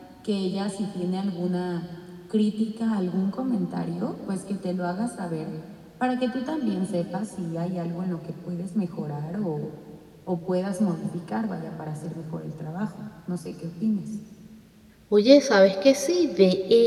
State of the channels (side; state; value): both; identical; correlation 1.00